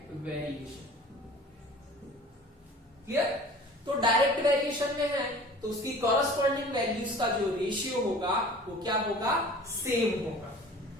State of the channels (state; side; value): normal; both; correlation 0.44